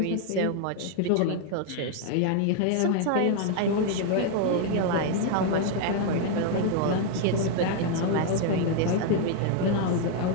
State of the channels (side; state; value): both; different; correlation 0.00